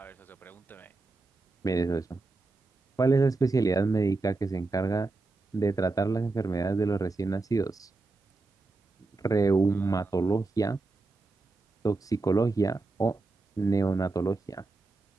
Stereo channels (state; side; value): quieter; left; 3.5 dB